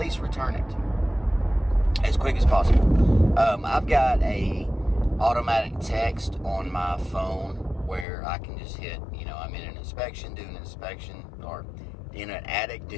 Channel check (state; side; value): drops out; right; at 8.1 s